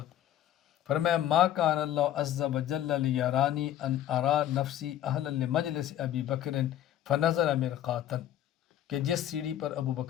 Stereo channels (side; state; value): right; quieter; 11.8 dB